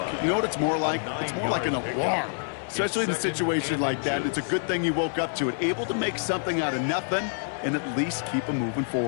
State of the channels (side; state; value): right; silent; 60 dB below the other